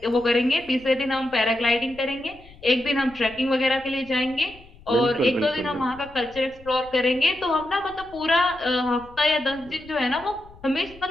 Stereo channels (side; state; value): left; noise; rumble, 23 dB below the sound